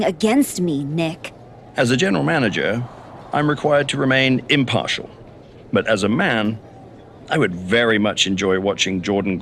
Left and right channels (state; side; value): identical; both; correlation 1.00